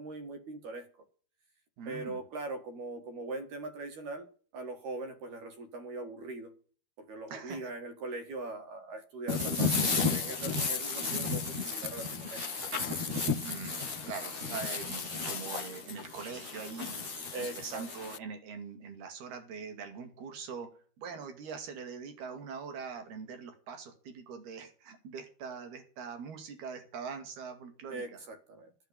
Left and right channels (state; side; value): late; left; 13 ms